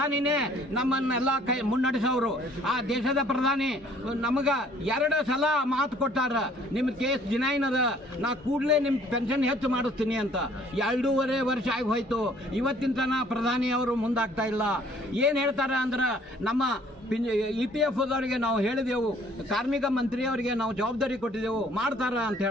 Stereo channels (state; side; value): normal; both; correlation 0.58